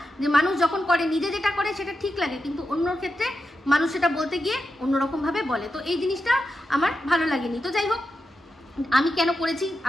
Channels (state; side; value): normal; both; correlation 0.89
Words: যে মানুষ যখন করে নিজে যেটা করে সেটা ঠিক লাগে, কিন্তু অন্যর ক্ষেত্রে মানুষ সেটা বলতে গিয়ে অন্যরকমভাবে বলে। তো এই জিনিসটা আমার ভালো লাগেনি। তো যাই হোক, আমি কেন করেছি